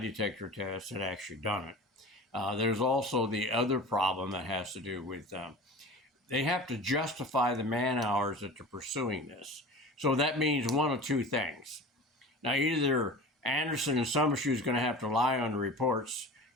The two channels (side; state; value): both; normal; correlation 0.36